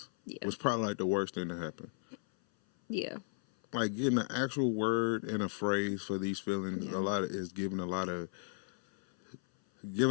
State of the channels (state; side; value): silent; right; 54 dB below the other